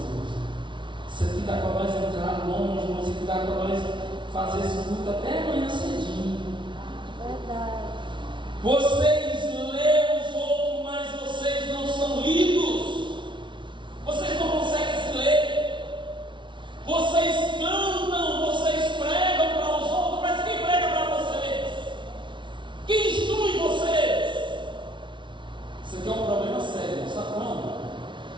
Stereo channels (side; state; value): left; late; 0.24 ms